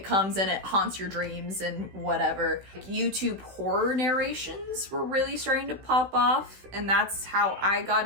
comes and it haunts your dreams and whatever. YouTube horror narrations were really starting to pop off, and that's how I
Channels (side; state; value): left; late; 16 ms